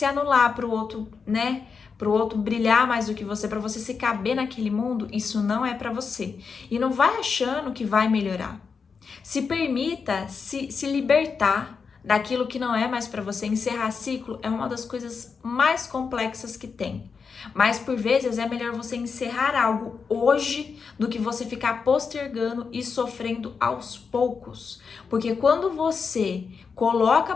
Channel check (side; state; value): right; quieter; 5.5 dB